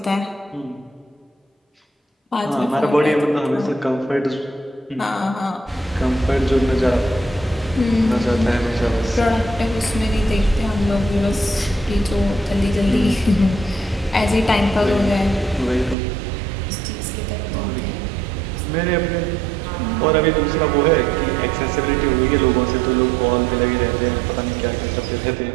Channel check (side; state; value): left; drops out; at 16.0 s